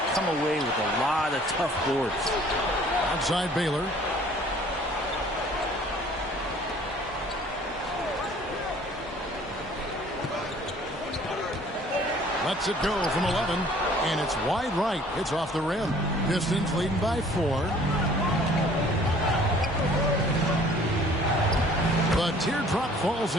come away with a lot of tough boards. Outside Baylor. Lets it go from 11, and it's wide right. It's off the rim. Pistons leading by 4. The teardrop falls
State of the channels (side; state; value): both; normal; correlation 0.54